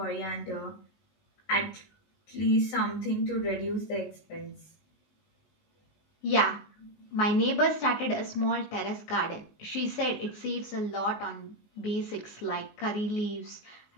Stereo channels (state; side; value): late; right; 19 ms